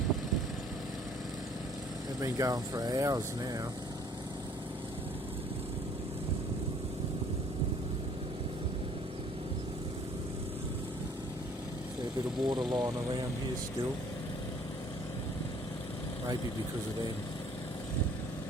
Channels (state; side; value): normal; both; correlation 0.57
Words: They've been going for hours now. Fair bit of water lying around here still. Maybe because of them.